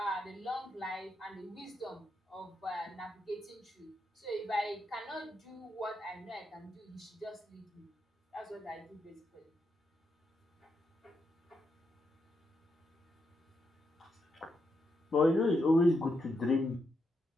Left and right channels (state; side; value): normal; both; correlation 0.82